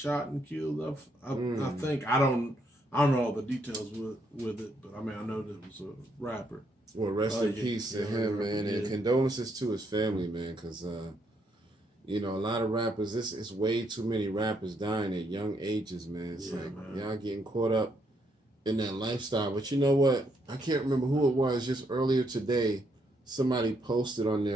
and killed. I think I don't know all the details with it, but I mean I know that it was a rapper. Well, rest in peace to him, man, and condolences to his family, man, because you know, a lot of rappers. It's way too many rappers dying at young ages, man. It's y'all getting caught up in that lifestyle. But you know what? I can't remember who it was. Just earlier today, somebody posted on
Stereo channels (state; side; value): normal; both; correlation 0.74